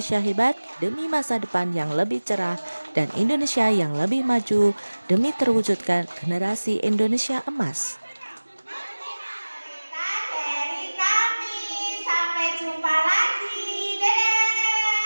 hebat demi masa depan yang lebih cerah dan Indonesia yang lebih maju demi terwujudkan generasi Indonesia emas. dari kami. Sampai jumpa lagi. Dadah.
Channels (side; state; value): both; inverted; correlation -1.00